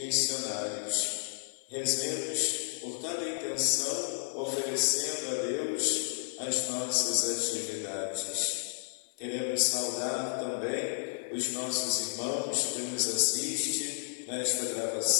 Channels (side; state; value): right; silent; 56 dB below the other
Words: Rezemos por cada intenção, oferecendo a Deus as nossas atividades. Queremos saudar também os nossos irmãos que nos assistem nesta